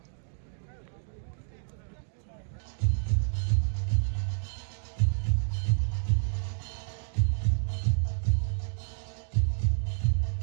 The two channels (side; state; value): left; silent; digital silence